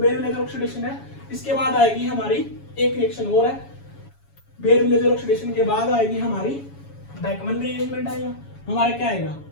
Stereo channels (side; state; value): right; late; 7.1 ms